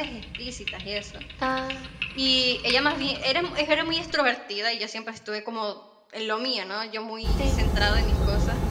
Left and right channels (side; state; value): both; identical; correlation 1.00